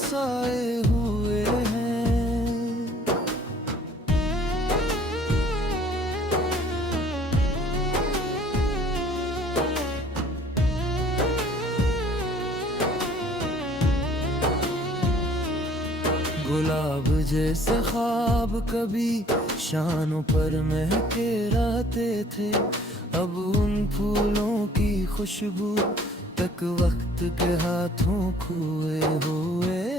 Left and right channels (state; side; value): normal; both; correlation 0.55